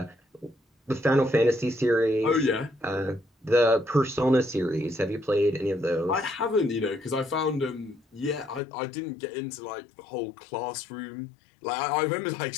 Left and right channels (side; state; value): right; drops out; at 8.6 s